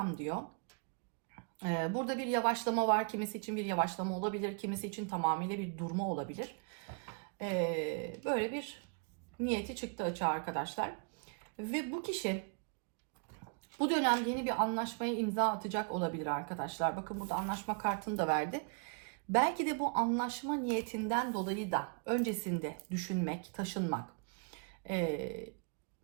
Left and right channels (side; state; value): left; quieter; 38.1 dB